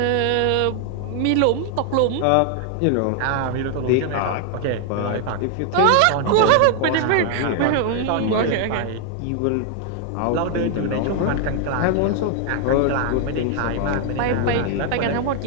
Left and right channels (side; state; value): both; different; correlation 0.00